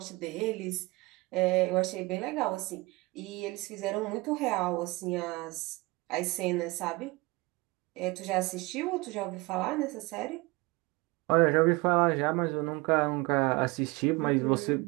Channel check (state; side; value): quieter; left; 23.7 dB